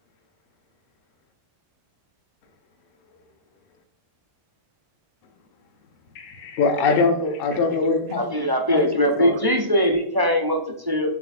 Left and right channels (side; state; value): left; late; 1.1 ms